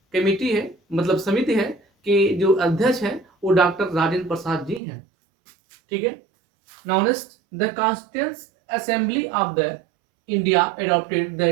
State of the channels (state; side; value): drops out; left; at 4.8 s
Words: मतलब समिति है, कि जो अध्यक्ष है वो डॉक्टर राजेंद्र प्रसाद जी हैं। ठीक है, now next the constituent assembly of the India adopted the